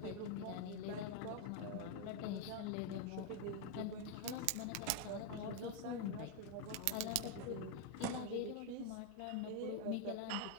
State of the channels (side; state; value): both; different; correlation 0.01